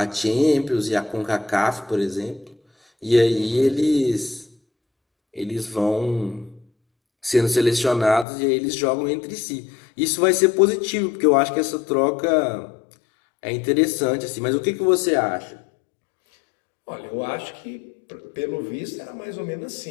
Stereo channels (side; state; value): right; drops out; at 8.2 s